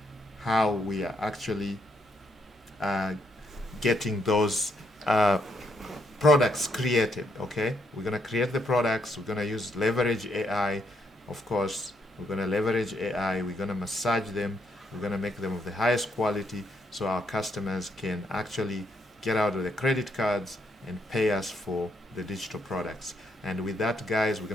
how we are actually getting those products created. Okay, we're going to create the products, we're going to use leverage AI. Of course, we're going to leverage AI, we're going to massage them, we're going to make them of the highest quality so our customers can actually get out of the credit cards and pay us for the digital products. And with that, guys, we're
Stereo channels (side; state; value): both; normal; correlation 0.76